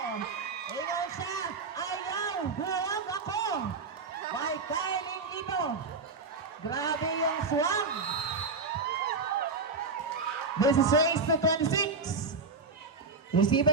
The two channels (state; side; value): quieter; left; 4.2 dB